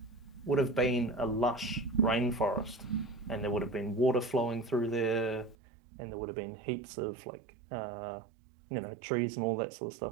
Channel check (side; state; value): left; drops out; at 5.6 s